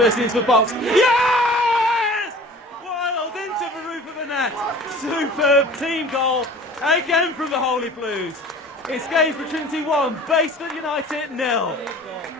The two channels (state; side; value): normal; both; correlation 0.44